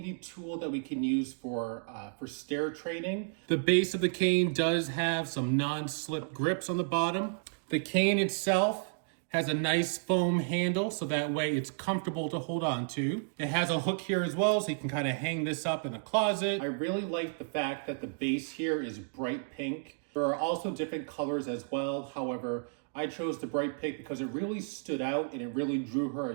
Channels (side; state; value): left; silent; digital silence